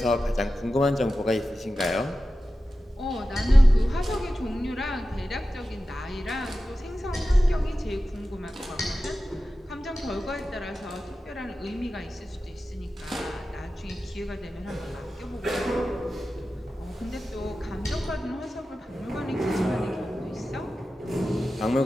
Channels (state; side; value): normal; both; correlation 0.94